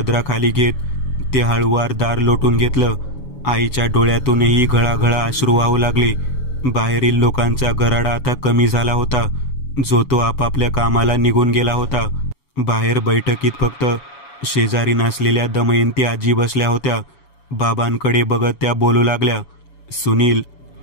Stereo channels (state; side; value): late; right; 7.1 ms